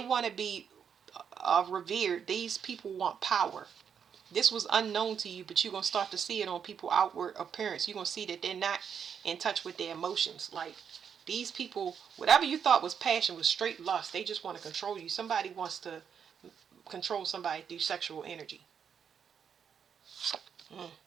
revered. These people want power. This was unknown to you, but you're going to start to see it on people's outward appearance. You're going to see that they're not in touch with their emotions. Like, these people, whatever you thought was passion was straight lust. They just want to control you. Somebody wants to control somebody through sexual energy.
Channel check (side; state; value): left; quieter; 7.4 dB